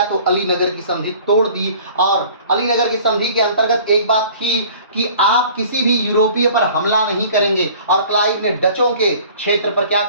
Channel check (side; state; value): both; inverted; correlation -0.48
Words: तो अलीनगर की संधि तोड़ दी। और अलीनगर की संधि के अंतर्गत एक बात थी कि आप किसी भी यूरोपीय पर हमला नहीं करेंगे, और क्लाइव ने डचों के क्षेत्र पर क्या